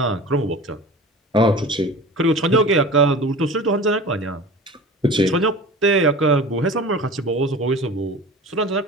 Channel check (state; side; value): normal; both; correlation 0.36